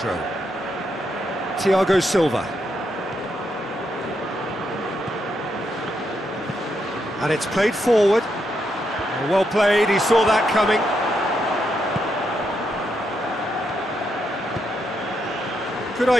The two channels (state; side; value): normal; both; correlation 0.81